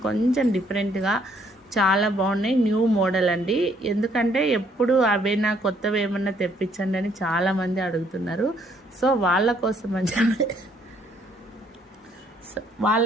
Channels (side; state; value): both; normal; correlation 0.67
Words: కొంచెం డిఫరెంట్గా చాలా బాగున్నాయి, న్యూ మోడల్ అండి. ఎందుకంటే ఎప్పుడు అవేనా కొత్తవి ఏమన్నా తెప్పించండి అని చాలామంది అడుగుతున్నారు. సో వాళ్ళ